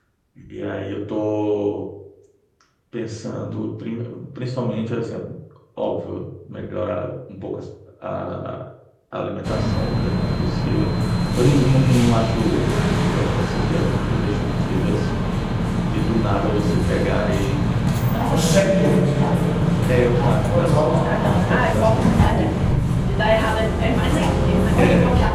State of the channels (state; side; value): identical; both; correlation 1.00